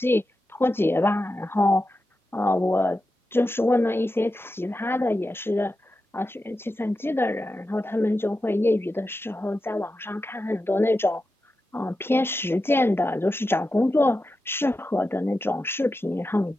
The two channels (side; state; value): both; normal; correlation 0.90